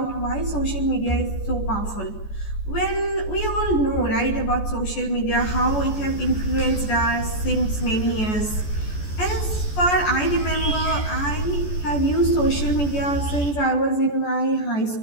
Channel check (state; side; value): late; right; 14 ms